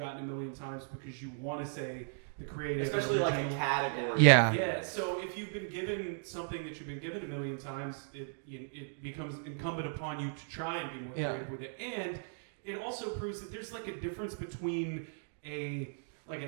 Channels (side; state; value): left; silent; digital silence